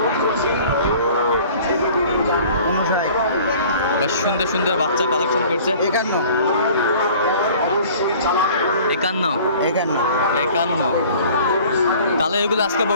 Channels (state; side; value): inverted; both; correlation -0.48